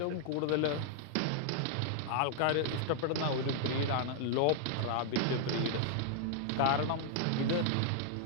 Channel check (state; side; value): different; both; correlation -0.01